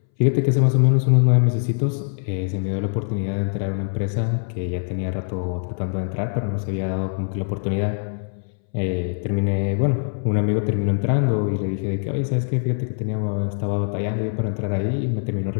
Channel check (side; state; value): right; silent; 64 dB below the other